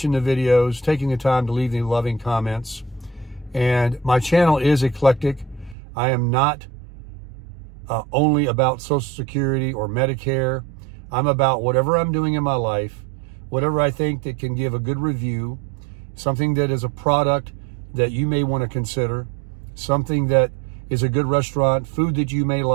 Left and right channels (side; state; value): left; drops out; at 5.8 s